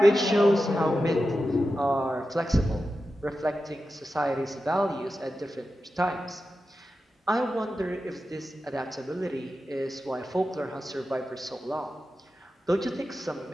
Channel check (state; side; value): normal; both; correlation 0.91